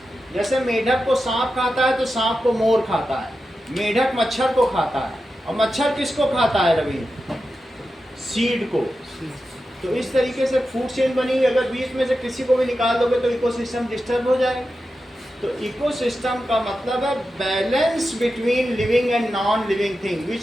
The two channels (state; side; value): normal; both; correlation 0.91